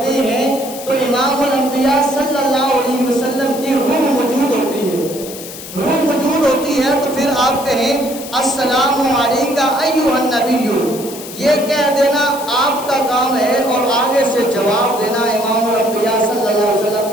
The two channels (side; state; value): left; noise; hiss, 12 dB below the sound